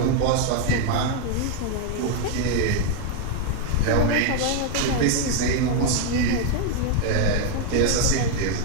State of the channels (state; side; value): different; both; correlation 0.01